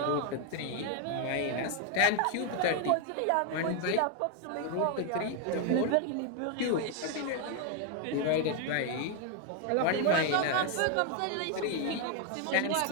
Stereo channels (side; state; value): both; different; correlation 0.00